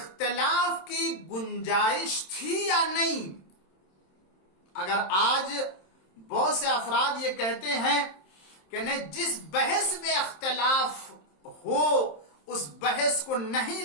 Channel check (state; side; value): late; right; 27 ms